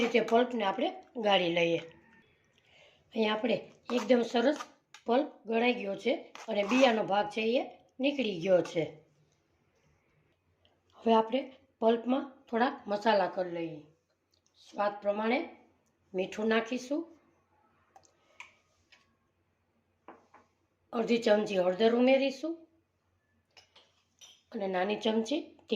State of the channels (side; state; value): both; identical; correlation 1.00